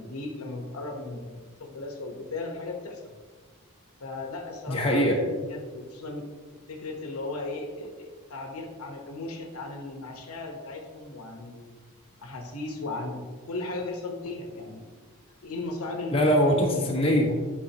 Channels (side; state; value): both; normal; correlation 0.31